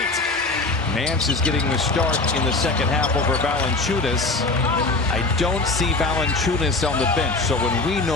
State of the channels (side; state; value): right; quieter; 3.3 dB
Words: Nance is getting the start in the second half over Valanciunas. I don't see Valanciunas on the bench, so when we